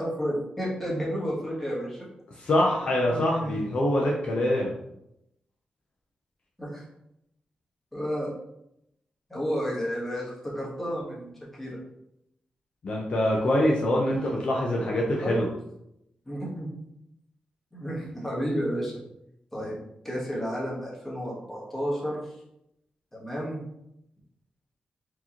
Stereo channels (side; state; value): both; normal; correlation 0.85